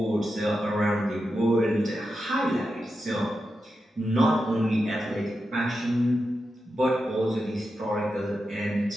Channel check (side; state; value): both; normal; correlation 0.89